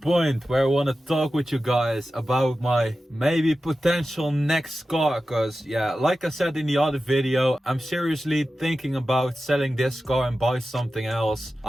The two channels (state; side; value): normal; both; correlation 0.93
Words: where I want to talk with you guys about my maybe potential next car. Cause yeah, like I said in the other video, I'm seriously thinking about selling this car and buy something else.